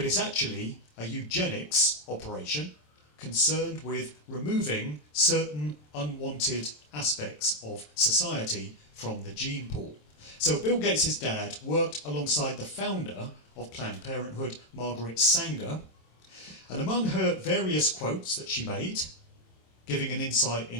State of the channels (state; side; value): late; right; 27 ms